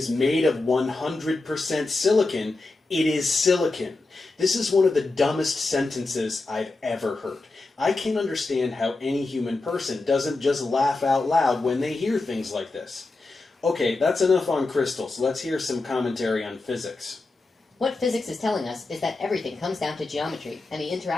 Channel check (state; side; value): quieter; right; 3.4 dB